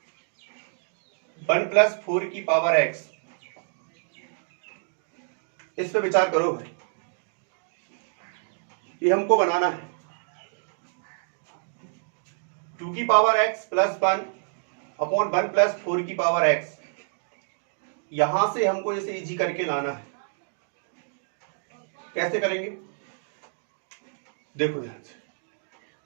1 plus 4 की पावर x। इस पे विचार करो भाई, ये हमको बनाना है 2 की power x plus 1 upon 1 plus 4 की पावर x। यहां से हमको इसे इजी करके लाना है। कैसे करेंगे देखो ध्यान से।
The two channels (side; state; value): left; silent; digital silence